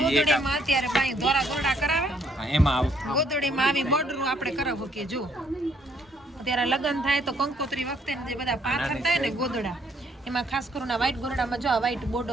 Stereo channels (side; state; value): both; normal; correlation 0.68